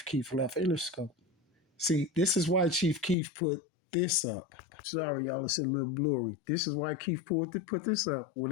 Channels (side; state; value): right; drops out; at 3.2 s